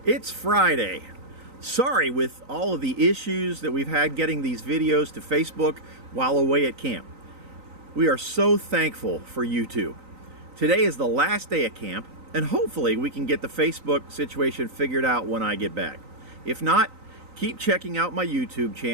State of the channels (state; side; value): late; left; 3.9 ms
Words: It's Friday. Sorry with all of the issues that we've had getting these videos to Facebook while away at camp. We are so thankful for YouTube. Today is the last day of camp, and hopefully we can get the Facebook situation figured out when I get back. If not, keep checking out my YouTube